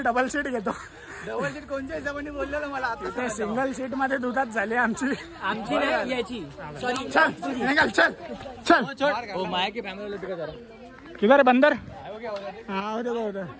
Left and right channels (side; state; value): both; identical; correlation 1.00